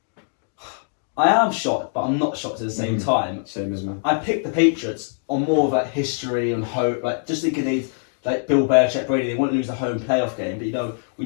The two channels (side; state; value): right; silent; digital silence